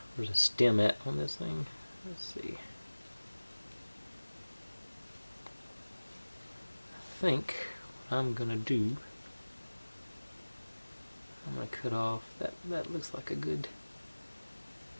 a stem at on this thing. Let's see. I think what I'm gonna do, I'm gonna cut off that looks like a good,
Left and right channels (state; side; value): inverted; both; correlation -1.00